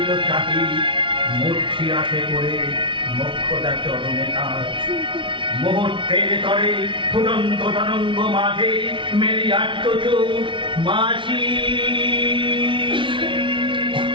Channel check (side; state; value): left; late; 0.24 ms